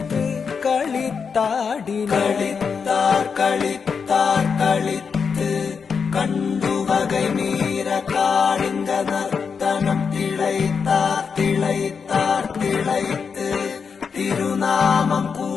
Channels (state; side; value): quieter; right; 5.9 dB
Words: களித்தாடினார் களித்தார் களித்து கண்டு வகை மீற காளிங்க நர்த்தனம் திளைத்தார் திளைத்தார் திளைத்து திருநாமம்